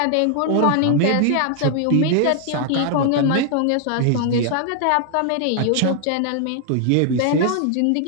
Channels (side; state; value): both; different; correlation 0.00